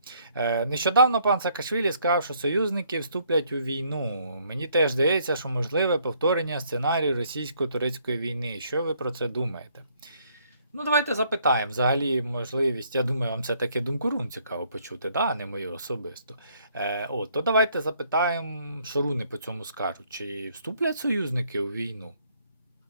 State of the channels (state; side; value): inverted; both; correlation -0.67